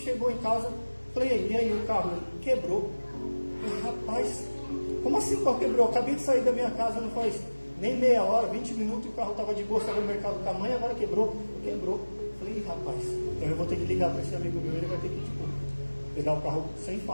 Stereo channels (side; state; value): both; inverted; correlation -1.00